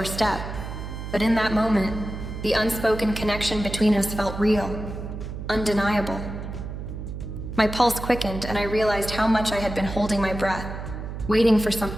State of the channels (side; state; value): right; noise; hum, 8 dB below the sound